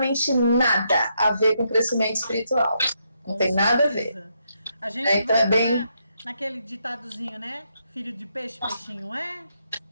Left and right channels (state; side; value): inverted; both; correlation -0.78